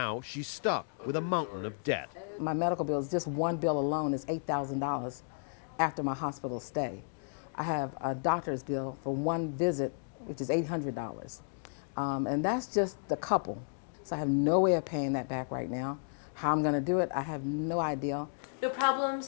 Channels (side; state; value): right; silent; digital silence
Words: she's stuck with a mountain of debt. My medical bills, just one bill alone is $8,000 after my hospital stay. I have a doctor's bill for one visit, which is $800. And that's just the couple. So I have no way of paying that back right now. How I'm going to do it, I have no idea. No